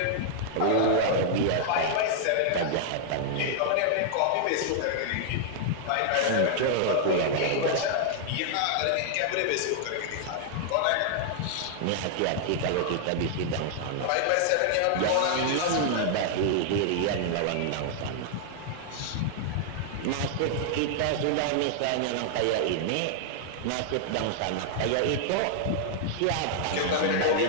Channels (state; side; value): different; both; correlation 0.00